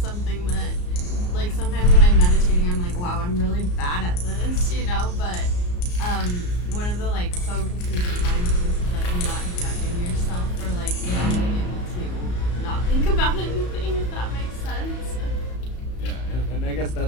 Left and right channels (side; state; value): right; late; 34 ms